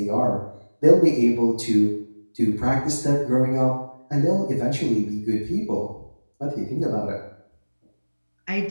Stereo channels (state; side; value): inverted; both; correlation -1.00